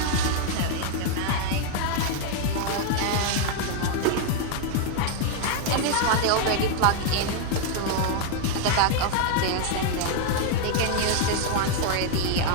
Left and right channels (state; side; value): different; both; correlation 0.00